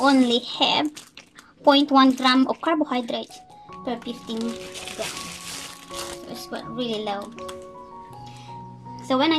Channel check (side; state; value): both; identical; correlation 1.00